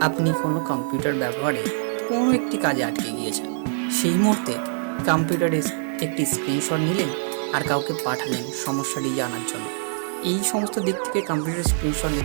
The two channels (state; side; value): silent; left; digital silence